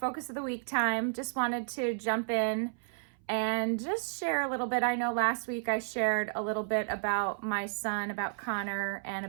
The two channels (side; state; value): left; silent; 56 dB below the other